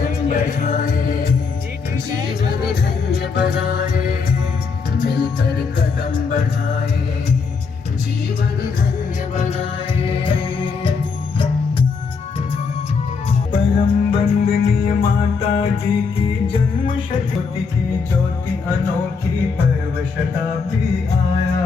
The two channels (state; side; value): quieter; right; 5.1 dB